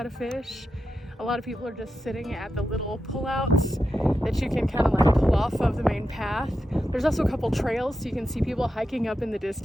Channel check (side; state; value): both; normal; correlation 0.88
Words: to fish. A lot of people are just sitting at the little pullouts that you can kind of like pull off of the main path. There's also a couple trails so you can see people hiking up in the